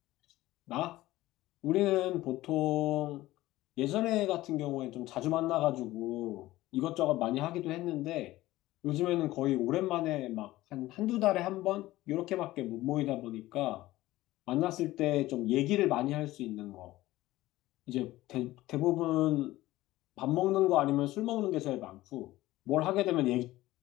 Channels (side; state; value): right; quieter; 16.9 dB